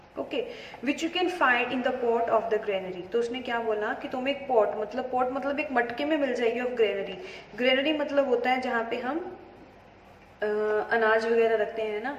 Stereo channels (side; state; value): both; identical; correlation 1.00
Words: Okay, which you can find in the pot of the granary. तो उसने क्या बोला कि तुम एक पॉट मतलब एक मटके में मिल जाएगी ऑफ ग्रेनरी। ग्रेनरी मतलब होता है जहाँ पे हम अनाज वगैरह रखते हैं ना,